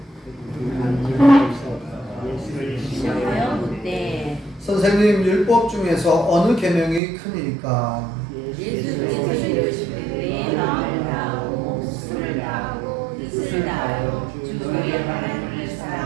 선생님, 율법 중에서 어느 계명이 크니까? 예수께서 이르시되 내 마음을 다하고 목숨을 다하고 뜻을 다하여 주 너희 하나님을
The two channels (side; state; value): left; drops out; at 7.0 s